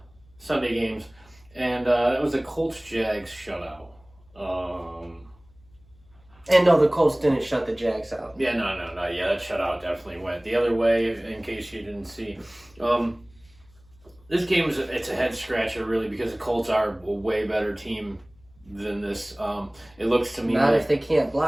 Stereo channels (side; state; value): left; noise; hum, 28 dB below the sound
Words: Sunday games, and that was the Colts-Jags shutout. And no, the Colts didn't shut the Jags out. Yeah, no. Yeah, that shutout definitely went the other way, in case you didn't see. This game it's a head scratcher, really, because the Colts are a way better team than this. It looks to me not like, if they can't